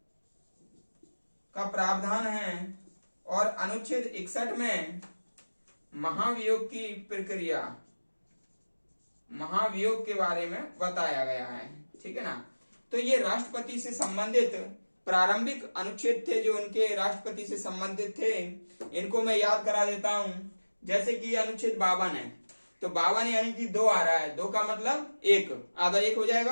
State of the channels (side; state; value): both; inverted; correlation -1.00